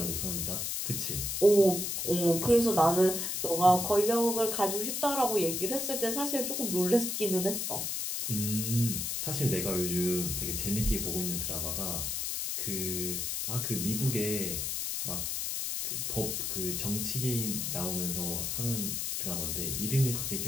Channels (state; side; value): noise; left; hiss, 2 dB below the sound